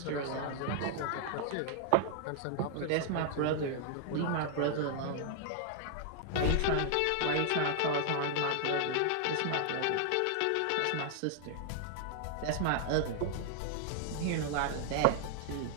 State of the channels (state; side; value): different; both; correlation 0.00